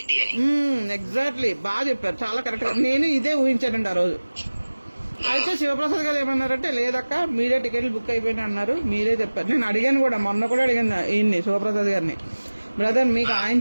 అని. ఎగ్జాక్ట్లీ, బాగా చెప్పారు, చాలా కరెక్ట్. నేను ఇదే ఊహించానండి ఆ రోజు. అయితే శివప్రసాద్ గారు ఏమన్నారంటే లేదక్క మీరే టికెట్లు బుక్ అయిపోయినా అన్నారు, మీరే చెప్పారు. నేను అడిగాను కూడా, మొన్న కూడా అడిగాను ఈయన్ని శివప్రసాద్ గారిని, బ్రదర్ మీకు ఆయన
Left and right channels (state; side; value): inverted; both; correlation -1.00